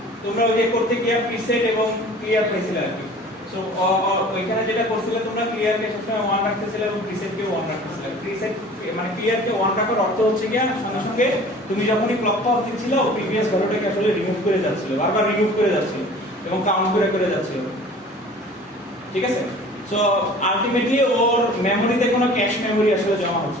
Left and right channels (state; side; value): normal; both; correlation 0.45